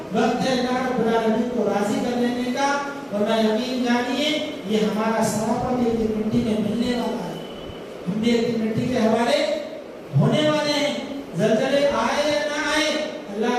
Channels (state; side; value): identical; both; correlation 1.00